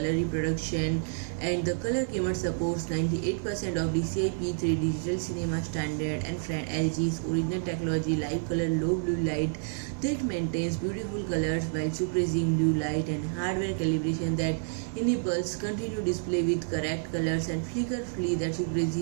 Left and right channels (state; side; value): silent; left; digital silence